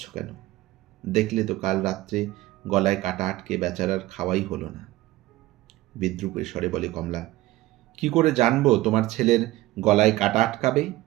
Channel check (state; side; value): quieter; left; 17.4 dB